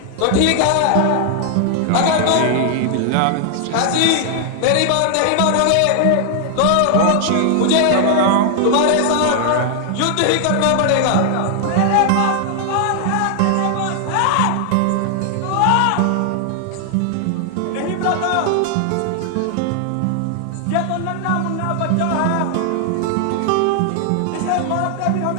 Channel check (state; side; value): different; both; correlation 0.00